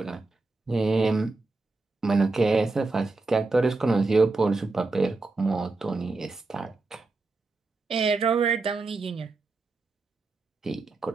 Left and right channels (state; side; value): quieter; left; 3.5 dB